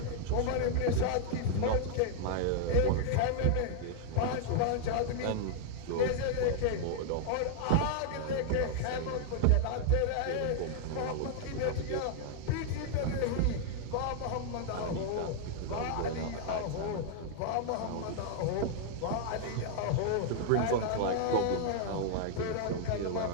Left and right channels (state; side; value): different; both; correlation -0.01